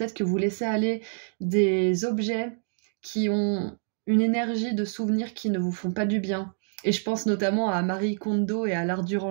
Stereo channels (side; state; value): left; silent; 60 dB below the other